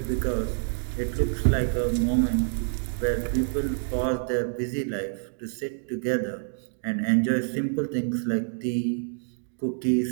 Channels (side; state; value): left; silent; digital silence